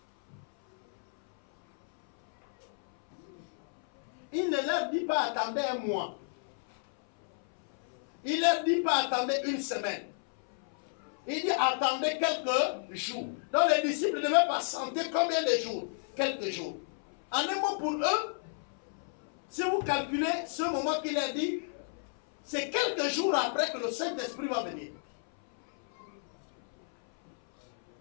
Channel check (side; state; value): right; silent; 57 dB below the other